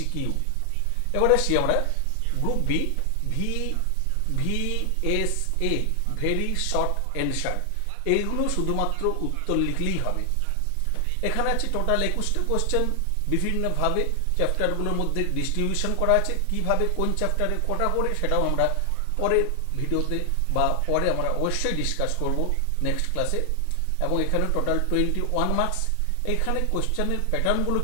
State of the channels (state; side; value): different; both; correlation 0.00